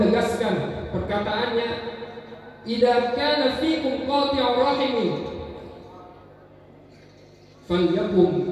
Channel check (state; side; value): identical; both; correlation 1.00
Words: perkataannya, "Idza kana fikum qati'ur rahimin